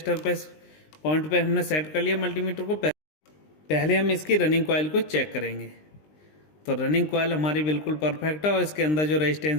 पे पॉइंट पे हमने सेट कर लिया मल्टीमीटर को। पहले हम इसकी रनिंग कॉइल को चेक करेंगे। तो रनिंग कॉइल हमारी बिल्कुल परफेक्ट है और इसके अंदर जो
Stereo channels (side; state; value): right; late; 20 ms